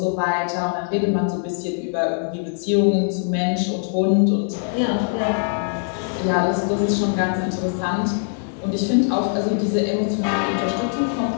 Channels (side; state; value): right; silent; digital silence